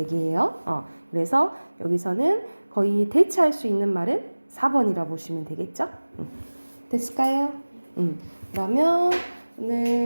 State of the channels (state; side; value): inverted; both; correlation -1.00